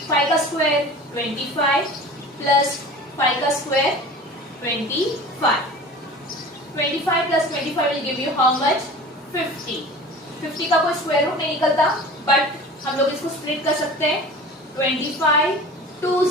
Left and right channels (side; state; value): both; normal; correlation 0.39